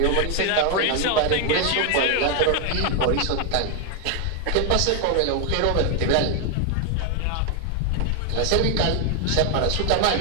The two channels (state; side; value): different; both; correlation 0.01